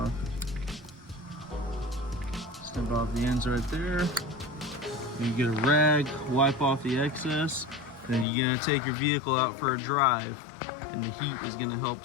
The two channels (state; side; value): drops out; right; at 8.2 s